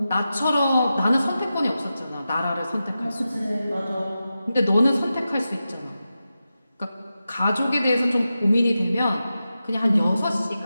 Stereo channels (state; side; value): inverted; both; correlation -0.92